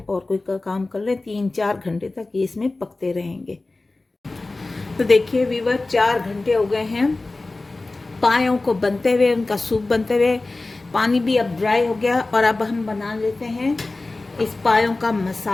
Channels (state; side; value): quieter; right; 3.2 dB